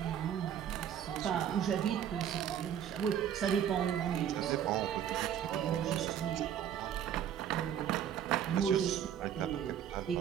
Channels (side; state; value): left; quieter; 9.6 dB